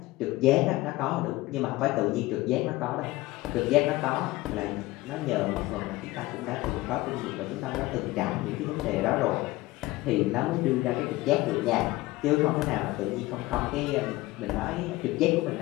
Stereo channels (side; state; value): right; quieter; 19.1 dB